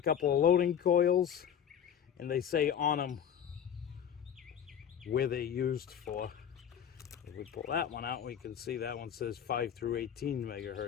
of loading coils, and they say on them where they're used for. If we pull that one out, we can see that one says 5 through 18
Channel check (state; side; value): quieter; right; 8.8 dB